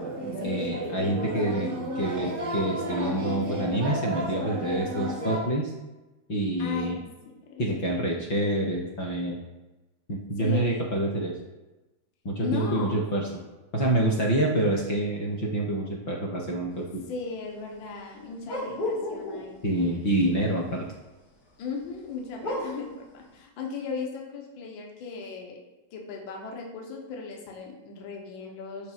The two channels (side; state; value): right; late; 5.9 ms